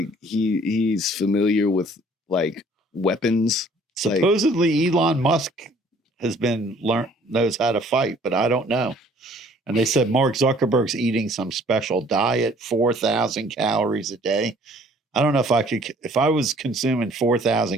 he's familiar with like weapons. Supposedly Elon Musk has knows how to fight, but I don't know. And they said Mark Zuckerberg's eating some special diet, 4,000 calories a day. I don't know if I was consuming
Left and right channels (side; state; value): both; normal; correlation 0.56